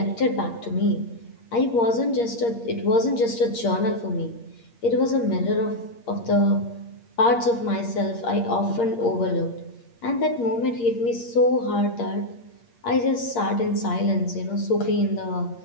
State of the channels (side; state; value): right; late; 8.6 ms